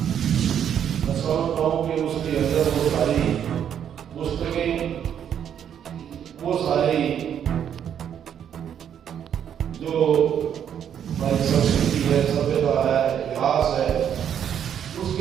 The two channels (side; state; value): left; quieter; 9.0 dB